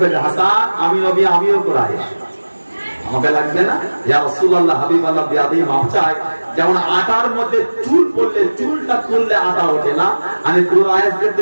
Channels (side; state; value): both; inverted; correlation -1.00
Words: হাসান আমি নবী, আমিও কুরাইশ, আমাকে লাগবে না? ইয়া রাসূলুল্লাহ হাবিবাল্লাহ বিয়াদি মাফ চাই, যেমন আটার মধ্যে চুল পড়লে চুলটা তুললে আটা ওঠে না, আমি কুরাইশদের